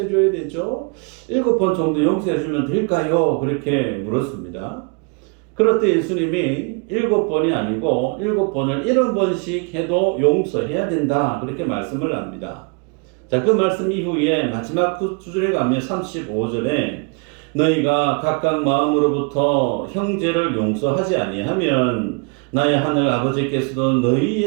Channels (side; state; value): left; quieter; 34.6 dB